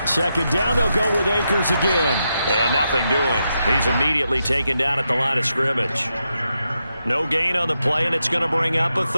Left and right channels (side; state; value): both; inverted; correlation -0.85